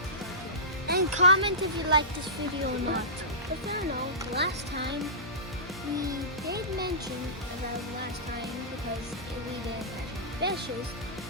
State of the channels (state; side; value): normal; both; correlation -0.20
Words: And comment if you like this video or not. If you don't know, last time we did mention about last time because we didn't catch any fishes.